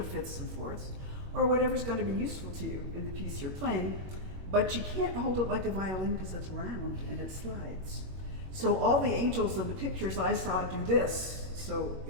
fifths and fourths, or whatever's going to be useful to you in the piece you're playing. But you can't hold it like a violin because it's round and it slides. So all the angels in the pictures I saw do this. So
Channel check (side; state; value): left; late; 21 ms